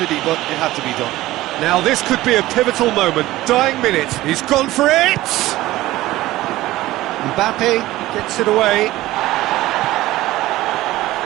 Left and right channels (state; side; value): quieter; left; 16.7 dB